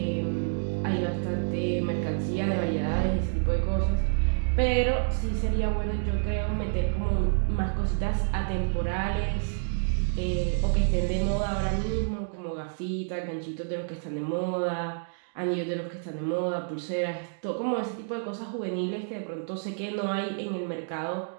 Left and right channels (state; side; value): silent; left; digital silence